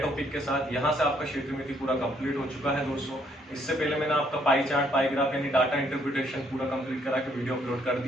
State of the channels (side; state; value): both; normal; correlation 0.68